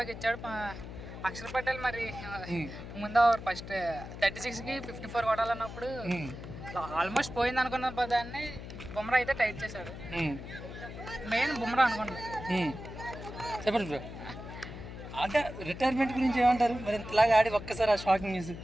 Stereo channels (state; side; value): noise; left; hum, 11 dB below the sound